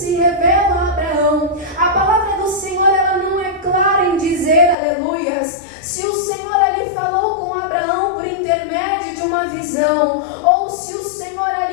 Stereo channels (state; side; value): drops out; right; at 4.8 s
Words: revela a Abraão, a palavra do Senhor, ela não é clara em dizer, aleluias, se o Senhor ali falou com Abraão por intermédio de uma visão, ou se o Senhor